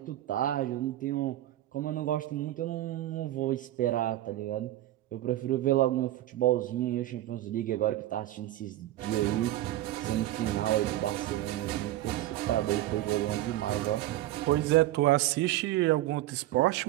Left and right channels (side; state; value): left; quieter; 14.9 dB